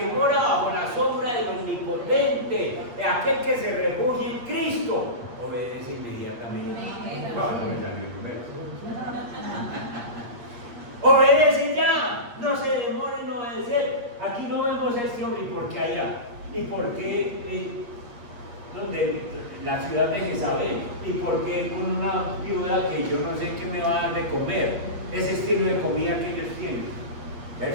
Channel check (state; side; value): late; left; 8.4 ms